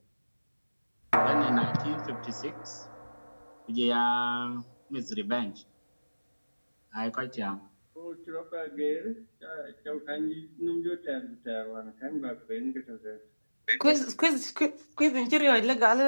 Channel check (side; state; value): both; inverted; correlation -1.00